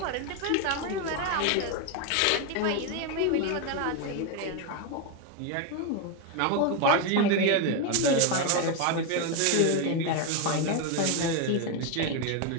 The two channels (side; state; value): both; different; correlation 0.02